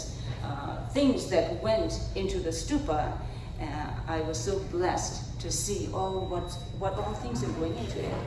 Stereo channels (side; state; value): both; identical; correlation 1.00